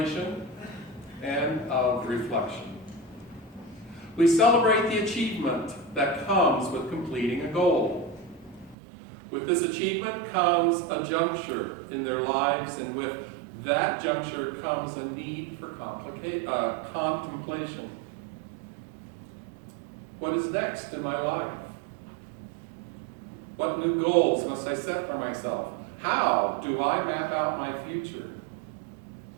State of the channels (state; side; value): drops out; left; at 8.8 s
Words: and of reflection. We celebrate the achievement that comes with completing a goal. With this achievement comes a juncture in their lives, and with that juncture comes a need for contemplation. What is next in my life? What new goals must I set for myself? How do I map out my future?